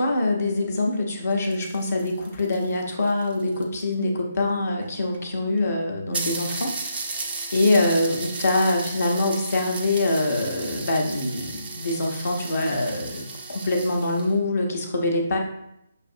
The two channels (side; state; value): both; inverted; correlation -0.78